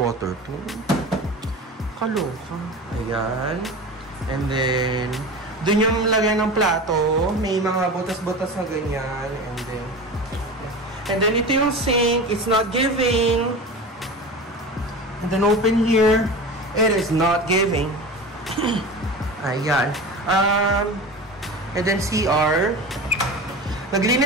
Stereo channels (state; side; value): normal; both; correlation 0.31